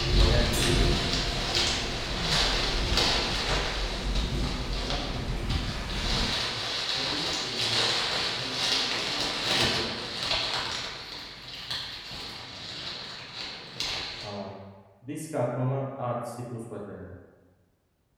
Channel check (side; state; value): both; identical; correlation 1.00